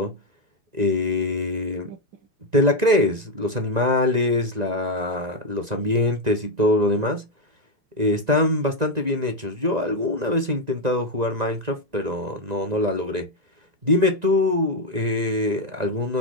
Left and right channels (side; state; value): left; late; 1.9 ms